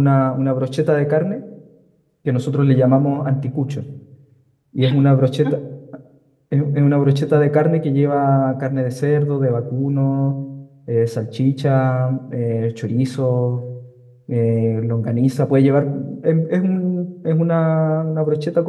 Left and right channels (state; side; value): identical; both; correlation 1.00